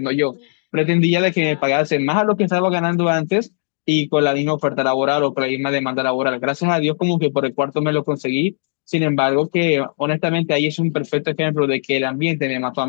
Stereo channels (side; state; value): right; silent; digital silence